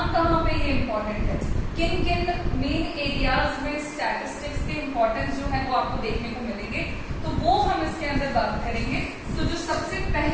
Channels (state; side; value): identical; both; correlation 1.00